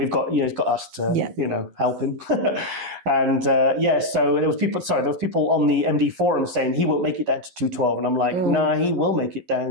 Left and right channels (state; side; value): late; left; 11 ms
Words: got, you know, he's got us to, you know, help him. And, so there was people on the MD forum saying he won't make it down to 212, and I'm like, nah, he will make it